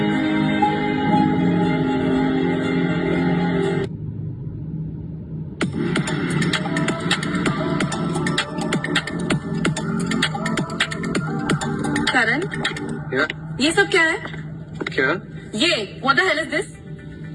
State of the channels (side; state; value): both; identical; correlation 1.00